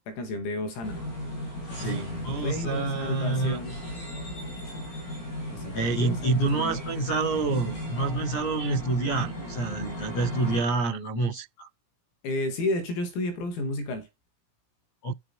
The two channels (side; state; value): right; late; 17 ms